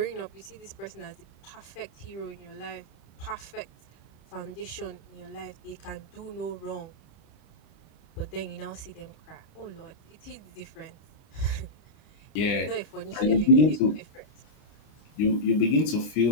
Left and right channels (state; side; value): late; right; 25 ms